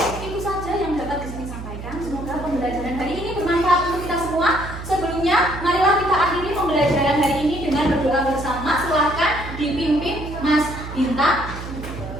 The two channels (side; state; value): right; noise; hum, 10 dB below the sound